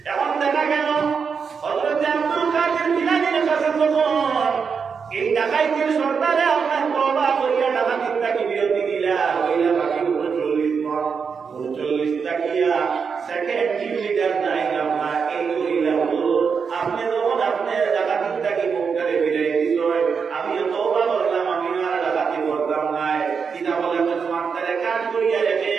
এখন দেখা গেল হযরত আব্দুল কাদের জিলানীর কাছে যখন এই ডাকাইতের সর্দারে আপনার তওবা করিয়া ডাকাতির থেকে বিরতি দিলা হইলা বাকি 39 টাকিয়া সেকেন্ড টিম লিডার নাই আপনার এই কইলা হুজুর আপনি যখন আপনি ডাকাতির থেকে মুখ করে বিরাই দিল আমি তওবা করলাম আমি আর ডাকাতি করতাম না কিনা বলে তোমার তারে কাজ করিয়া রেখে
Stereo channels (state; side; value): quieter; left; 6.0 dB